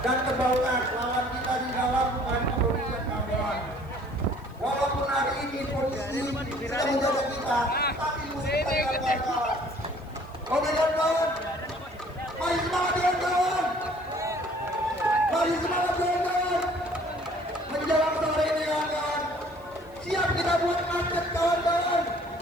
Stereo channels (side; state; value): left; noise; hiss, 30 dB below the sound